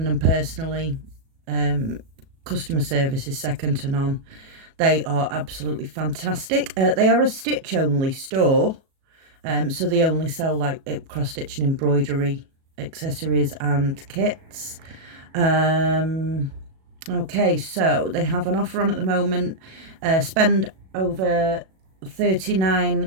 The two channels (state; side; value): late; left; 37 ms